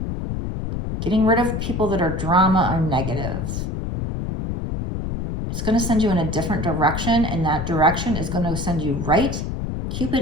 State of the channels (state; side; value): noise; left; rumble, 4 dB below the sound